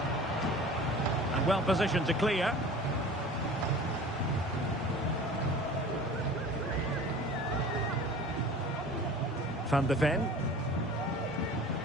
And well positioned to clear. Van de Ven.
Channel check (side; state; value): both; normal; correlation 0.41